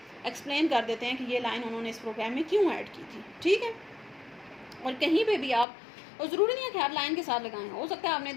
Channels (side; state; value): right; drops out; at 5.7 s